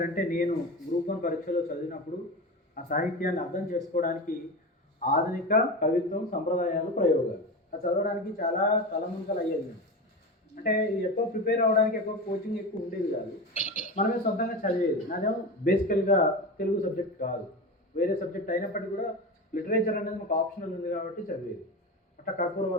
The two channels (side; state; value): both; normal; correlation 0.24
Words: అంటే నేను గ్రూప్ 1 పరీక్షలో చదివినప్పుడు ఆ సాహిత్యాన్ని అర్థం చేసుకోవడానికి ఆధునిక కవిత్వం, సంప్రదాయాలు, ప్రయోగాలు అది చదవడానికి చాలా తలమునకలు అయ్యేది. అంటే ఎక్కువ ప్రిపేర్ అవ్వడానికి ఎక్కువ కోచింగ్ ఎక్కువ ఉండేది కాదు, మనమే సొంతంగా చదివేది. నాదేమో బేసికల్గా తెలుగు సబ్జెక్ట్ కాదు, వేరే సబ్జెక్ట్ అయినప్పటికీ కూడా లిటరేచర్ అనేది మాకు ఆప్షనల్ ఉంది కాబట్టి చదివేది. అట్లా కర్పూర